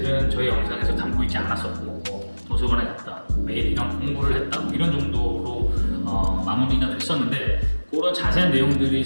저희 영상에서 담고 있지 않았었고 뭐 도서관에 갔다, 매일 이런 공부를 했다 뭐 이런 정도로 마무리가 됐었는데 그런 자세한 내용들이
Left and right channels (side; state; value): both; inverted; correlation -1.00